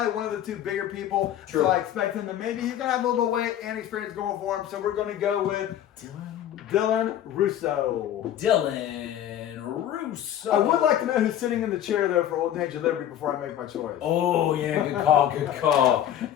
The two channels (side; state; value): right; quieter; 11.1 dB